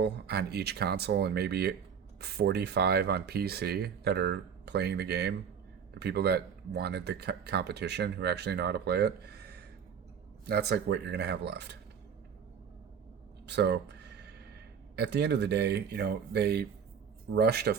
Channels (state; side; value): quieter; left; 7.2 dB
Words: on each console and maybe 45 on PC that are playing the game. The people that wanted the competition, who actually know how to play it. That's like what you're going to have left. So at the end of the day, they rushed a